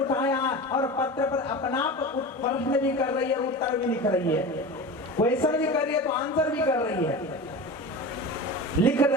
और पत्र पर अपना प्रश्न भी कर रही है, उत्तर भी लिख रही है, क्वेश्चन भी कर रही है तो आंसर भी कर रही है। लिख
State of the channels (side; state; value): both; normal; correlation 0.30